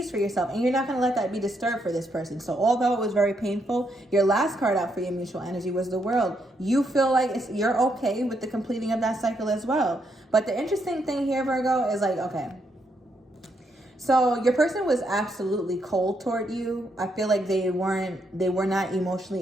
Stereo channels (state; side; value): normal; both; correlation 0.77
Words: for yourself, and you're not going to let that be disturbed for this person. So although it was very painful, your last card out for your mutual energy was the World. You feel like you're okay with the completing of that cycle as well. But the interesting thing here, Virgo, is like, okay, so your person was absolutely cold toward you. I feel like they were not